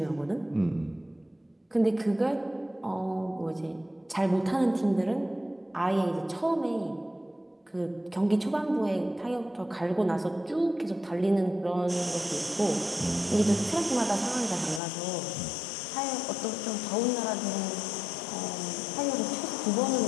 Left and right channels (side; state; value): right; drops out; at 14.8 s